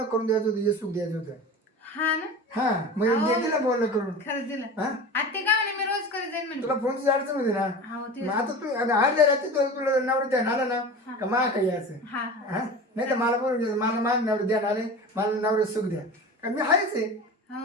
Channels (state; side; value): normal; both; correlation 0.33